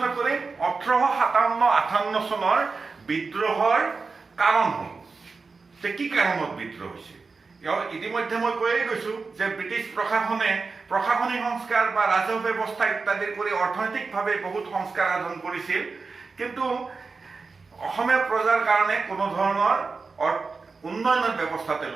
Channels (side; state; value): left; quieter; 4.4 dB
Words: কৰিম 1857-58 চনৰ বিদ্ৰোহৰ কাৰণসমূহ, যে কি কাৰণত বিদ্ৰোহ হৈছিল। ইতিমধ্যে মই কৈয়ে গৈছোঁ যে ব্ৰিটিছ প্ৰশাসনে প্ৰশাসনিক সংস্কাৰ বা ৰাজহ ব্যৱস্থা ইত্যাদি কৰি অৰ্থনৈতিকভাৱে বহুত সংস্কাৰ সাধন কৰিছিল, কিন্তু অসমীয়া প্ৰজাৰ কাৰণে কোনো ধৰণৰ উন্নয়নৰ ব্যৱস্থা